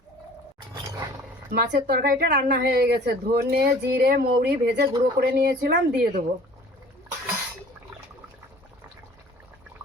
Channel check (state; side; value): normal; both; correlation 0.48